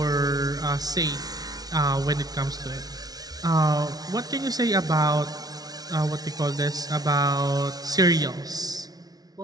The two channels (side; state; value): left; late; 0.19 ms